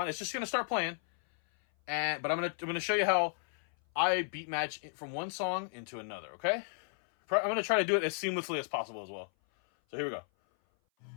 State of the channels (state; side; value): silent; right; 55 dB below the other